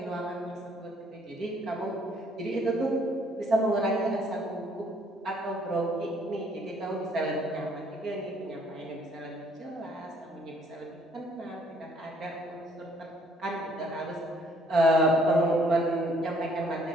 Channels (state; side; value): normal; both; correlation 0.63